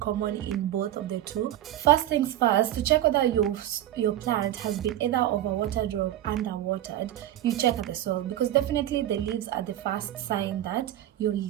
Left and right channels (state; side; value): quieter; left; 12.9 dB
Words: in both of the two. First things first, to check whether your plant has been either overwatered or underwatered, you check at the soil, because definitely the leaves are the first sign that your